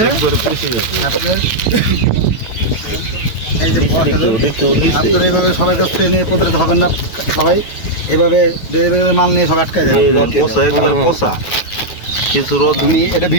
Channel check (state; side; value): late; right; 9.2 ms